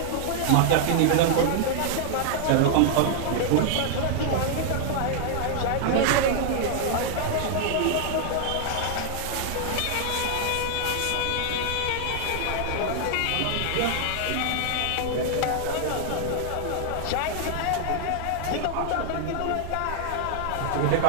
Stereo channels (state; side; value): different; both; correlation 0.00